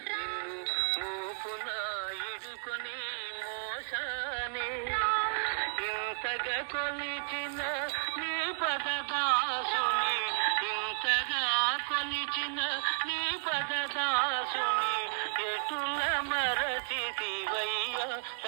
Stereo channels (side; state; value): left; silent; digital silence